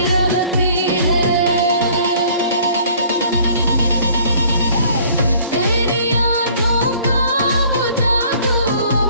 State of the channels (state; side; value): inverted; both; correlation -0.55